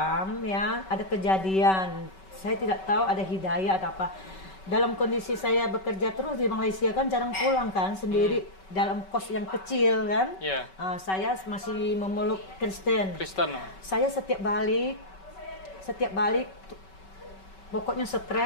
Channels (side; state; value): right; late; 5.3 ms